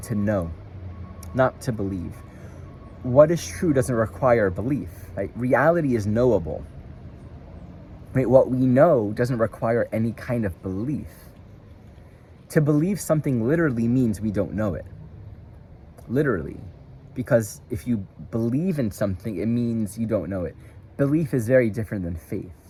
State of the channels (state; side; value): identical; both; correlation 1.00